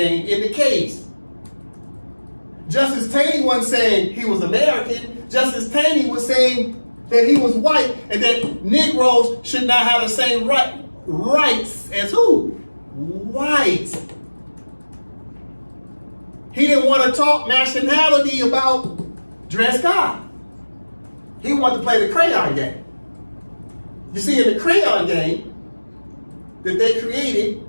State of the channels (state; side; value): inverted; both; correlation -1.00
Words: in the case. Justice Taney wasn't saying he was American. Justice Taney was saying that he was white and that Negroes should not have the same rights as who? Whites. He didn't want to talk nationality about Dred Scott. He wanted to play the crayon game. You see, in the crayon game that they created,